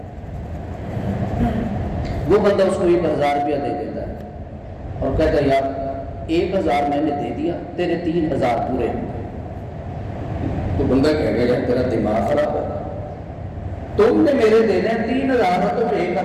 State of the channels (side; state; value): both; identical; correlation 1.00